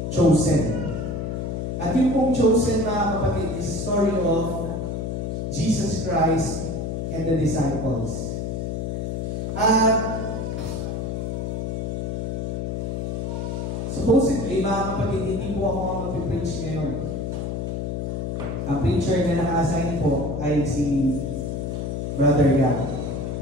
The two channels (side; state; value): left; noise; hum, 3 dB below the sound